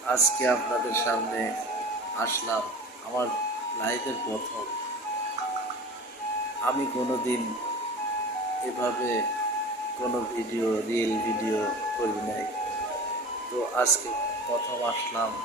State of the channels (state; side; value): normal; both; correlation 0.37